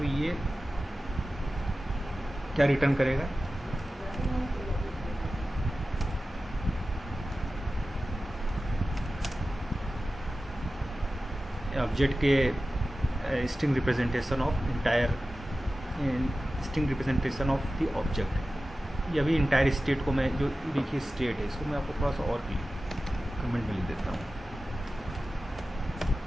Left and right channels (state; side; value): normal; both; correlation 0.95